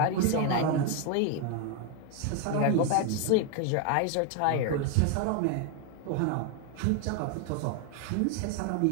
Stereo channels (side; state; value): both; different; correlation 0.01